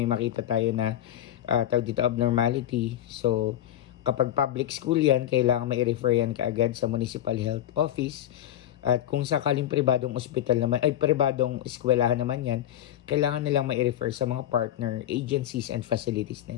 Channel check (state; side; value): quieter; right; 11.7 dB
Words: may makita tayo na tawag dito abnormality. So, kapag public school yan, kailangan mai-refer yan kaagad sa municipal health office. At kung sakaling pribadong ospital naman, pribadong eskwelahan naman yan, kailangan nilang mai-refer sa mga partner agencies and facilities